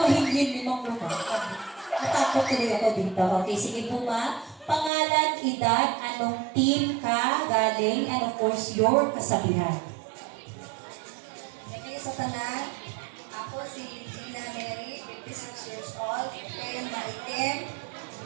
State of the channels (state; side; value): drops out; left; at 4.9 s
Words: ni Pangulong Marcos. Natakot tuloy ako dito. Okay, sige po ma'am. Pangalan, edad, anong team ka galing, and of course, your kasabihan. Gabi sa tanan, ako si Gina Mary, 56 years old, ngayon maitim.